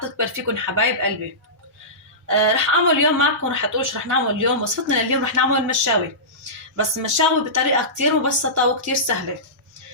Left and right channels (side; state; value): both; normal; correlation -0.20